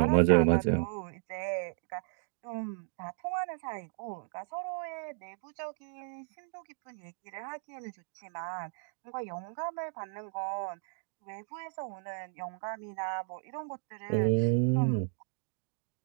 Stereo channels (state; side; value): silent; left; digital silence